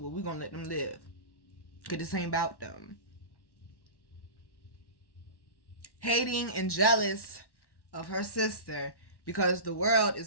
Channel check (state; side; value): late; right; 1.1 ms